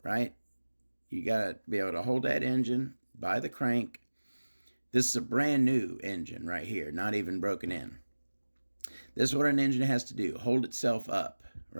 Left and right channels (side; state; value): both; inverted; correlation -1.00